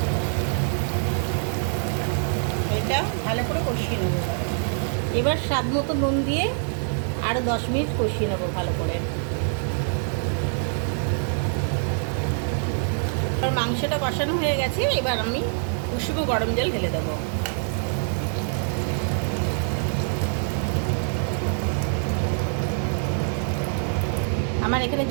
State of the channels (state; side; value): silent; left; 59 dB below the other